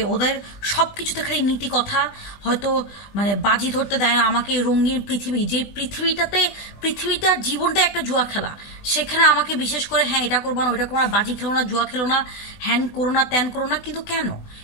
ওদের সব কিছুতে খালি নীতি কথা, হয়তো মানে বাজি ধরতে দেয় না আমাকে। রঙিন পৃথিবী, যে পৃথিবীটার জীবনটা একটা জুয়া খেলা, সেখানে আমাকে বিশেষ করে হ্যাঁ এটা করবো না, ওইটা করো না, বাজি খেলো না, জুয়া খেলো না, হ্যান করো না, ত্যান করো না। কিন্তু কেন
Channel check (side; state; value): right; late; 20 ms